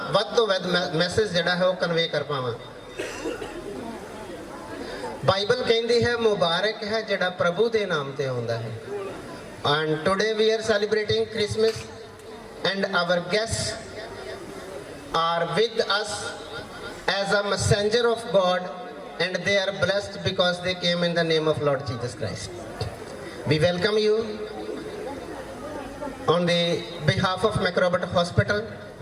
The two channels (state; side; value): identical; both; correlation 1.00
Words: वध तो वध मैसेज जिहड़ा है वो कन्वे कर पावां। बाइबल कहती है मुबारक है जिहड़ा प्रभु के नाम ते आउंदा है। And today we are celebrating Christmas and our guests are with us as a messenger of God, and they are blessed because they came in the name of Lord Jesus Christ. We welcome you on the behalf of Macrobot Hospital,